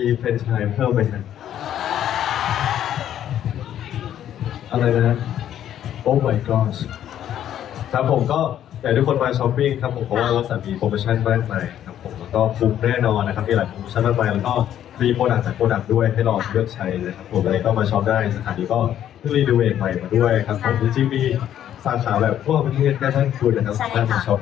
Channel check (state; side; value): quieter; right; 10.8 dB